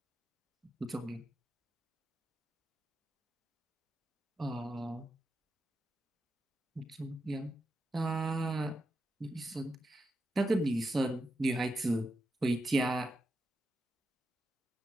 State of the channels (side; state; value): both; normal; correlation 0.87